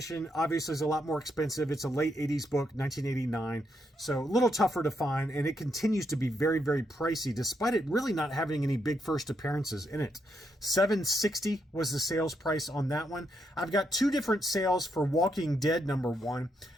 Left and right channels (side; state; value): both; normal; correlation 0.79